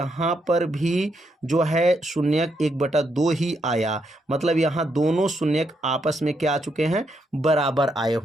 पर भी जो है शून्यक 1/2 ही आया। मतलब यहाँ दोनों शून्यक आपस में क्या आ चुके हैं? बराबर आए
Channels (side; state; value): both; normal; correlation 0.78